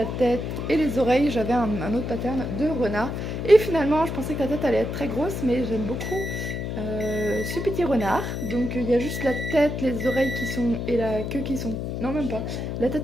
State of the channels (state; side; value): noise; left; hum, 4 dB below the sound